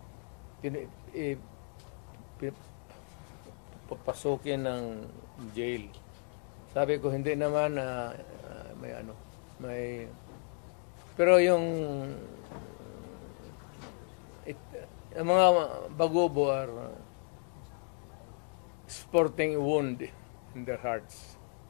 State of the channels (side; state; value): right; quieter; 38.3 dB